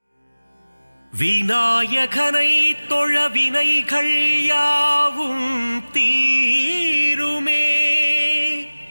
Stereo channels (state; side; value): inverted; both; correlation -1.00